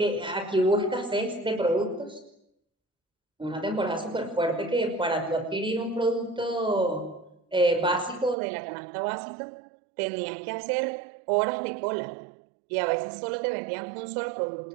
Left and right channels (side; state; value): left; drops out; at 8.3 s